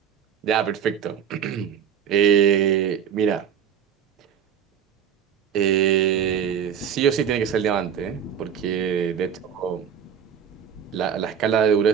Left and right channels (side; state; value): left; quieter; 8.3 dB